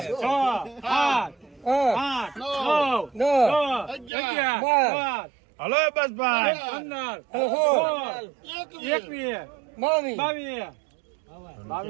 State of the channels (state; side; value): drops out; left; at 4.1 s